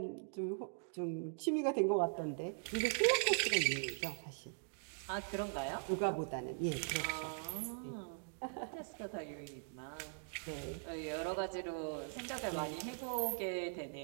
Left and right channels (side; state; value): left; silent; digital silence